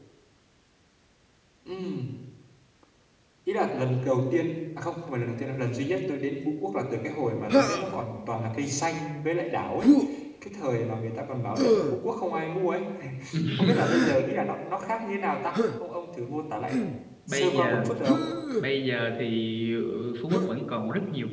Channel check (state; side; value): identical; both; correlation 1.00